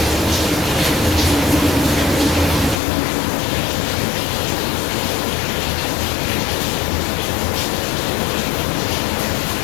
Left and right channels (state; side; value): drops out; right; at 2.8 s